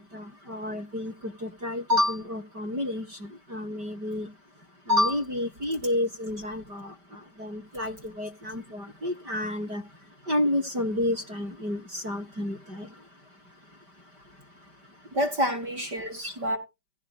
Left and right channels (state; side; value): late; left; 5.1 ms